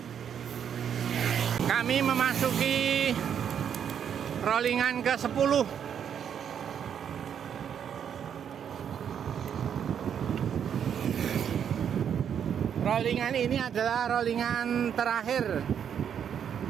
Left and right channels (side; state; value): left; quieter; 8.4 dB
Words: Kami memasuki rollingan ke-10. Rollingan ini adalah rollingan terakhir.